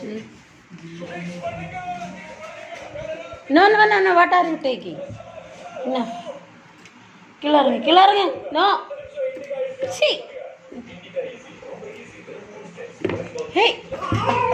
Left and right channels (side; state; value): both; identical; correlation 1.00